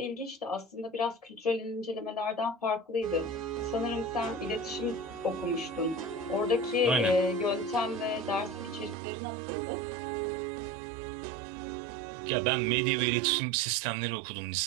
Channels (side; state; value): left; drops out; at 9.0 s